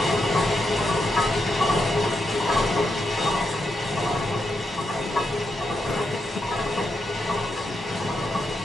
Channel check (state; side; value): normal; both; correlation 0.84